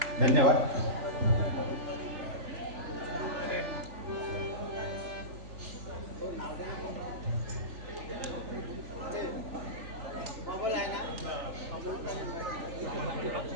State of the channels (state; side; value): late; left; 3.4 ms